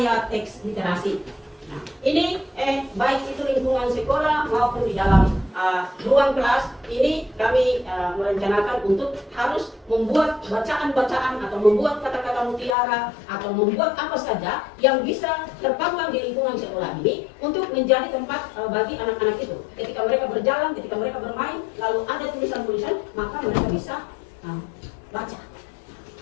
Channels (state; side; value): drops out; right; at 12.8 s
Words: teks literasi. Nah, ini baik itu lingkungan sekolah maupun di dalam ruang kelas ini kami merencanakan untuk harus membuat bacaan-bacaan atau membuat kata-kata mutiara atau membuat apa saja yang bisa terpampang di lingkungan sekolah ini untuk menjadi tempat bagi anak-anak itu. Ketika mereka berjalan, ketika mereka bermain, lalu ada tulisan-tulisan, maka mereka bisa baca.